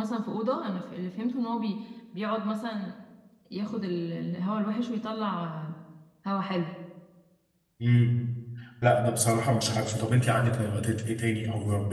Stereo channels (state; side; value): identical; both; correlation 1.00